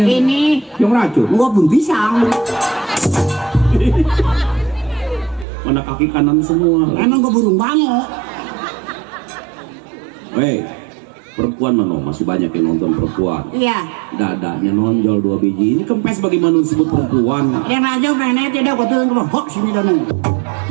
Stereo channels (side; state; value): left; drops out; at 5.5 s